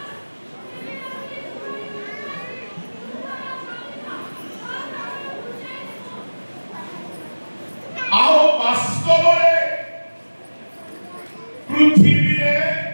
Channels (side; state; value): both; inverted; correlation -1.00